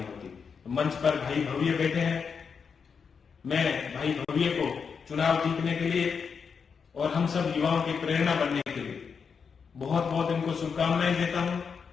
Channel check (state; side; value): quieter; right; 6.0 dB